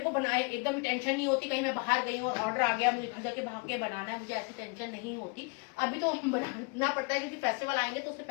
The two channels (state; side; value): quieter; right; 32.5 dB